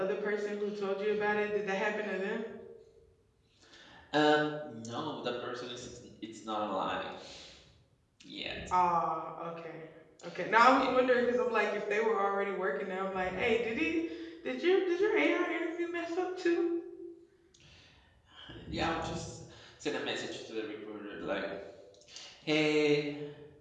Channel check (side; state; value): both; identical; correlation 1.00